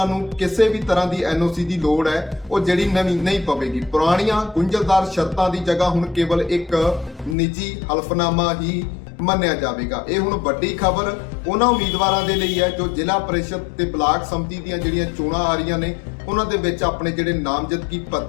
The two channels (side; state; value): right; drops out; at 7.4 s